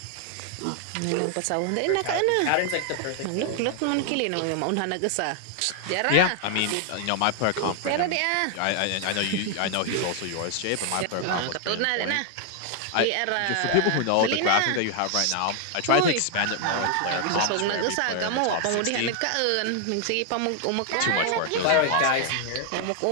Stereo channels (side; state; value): both; different; correlation 0.00